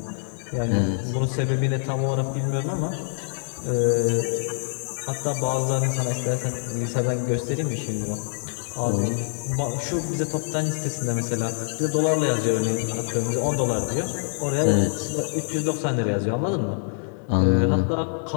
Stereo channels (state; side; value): silent; right; digital silence